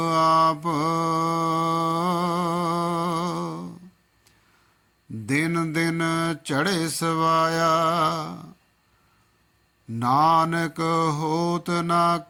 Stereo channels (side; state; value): both; identical; correlation 1.00